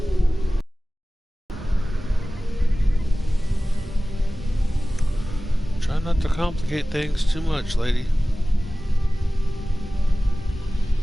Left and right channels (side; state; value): both; normal; correlation 0.97